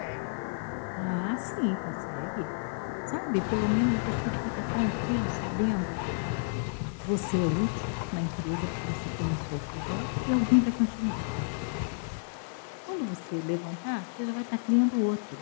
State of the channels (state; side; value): silent; right; digital silence